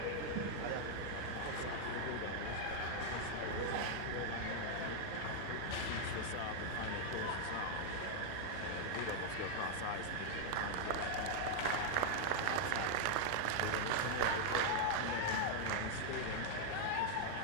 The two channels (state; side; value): different; both; correlation 0.00